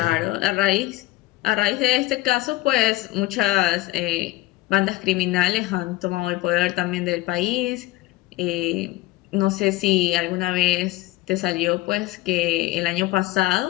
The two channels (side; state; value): right; quieter; 18.2 dB